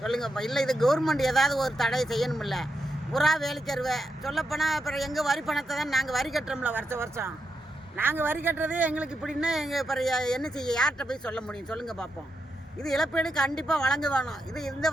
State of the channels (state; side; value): normal; both; correlation 0.84